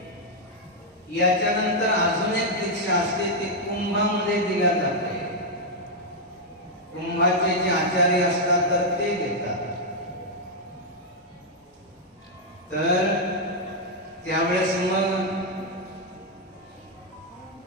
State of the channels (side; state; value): both; normal; correlation -0.02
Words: याच्यानंतर अजून एक दीक्षा असते ती कुंभामध्ये दिल्या जाते. कुंभाचे जे आचार्य असतात तर ते घेतात. तर त्यावेळेस मग